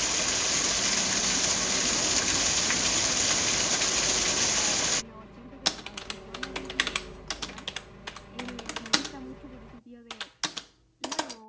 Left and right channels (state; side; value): identical; both; correlation 1.00